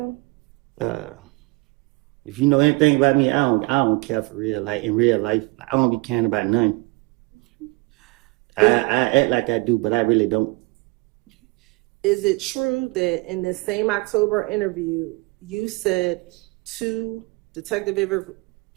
If you know anything about me, I don't care for real. Like in real life, I don't be caring about nothing. I act like I do, but I really don't. Is it true that in this same October interview, you said to Detective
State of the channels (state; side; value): quieter; left; 25.6 dB